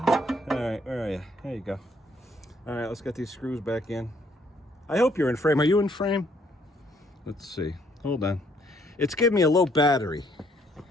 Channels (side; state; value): both; normal; correlation 0.67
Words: All right, where are you? There you go. All right, let's get these screws back in. I hope you're in frame. Are you in frame? Let's see. Hold on. It's giving me a low battery.